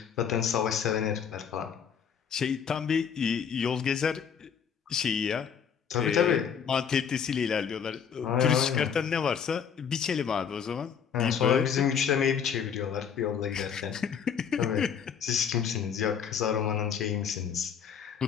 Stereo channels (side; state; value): right; quieter; 7.4 dB